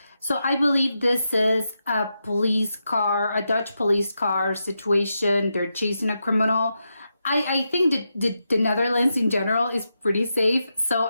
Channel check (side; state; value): both; inverted; correlation -0.86